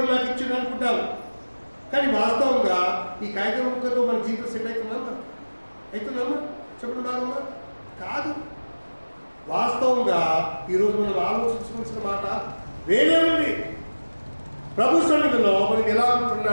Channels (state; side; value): inverted; both; correlation -1.00